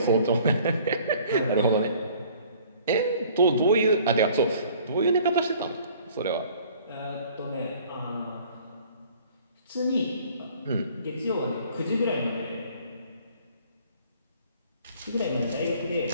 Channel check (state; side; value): inverted; both; correlation -0.54